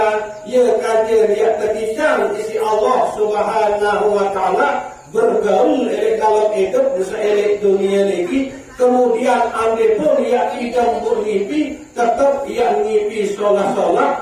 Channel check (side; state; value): both; identical; correlation 1.00